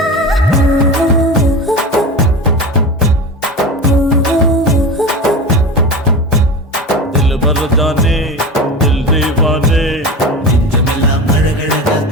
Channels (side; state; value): both; normal; correlation 0.28